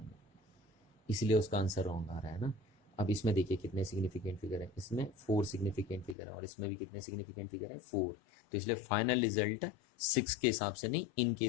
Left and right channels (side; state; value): right; drops out; at 6.2 s